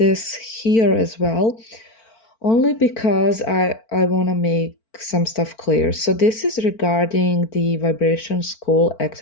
here as well only because I want to make some stuff clear. So this is regarding the vibration school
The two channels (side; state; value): right; late; 4.4 ms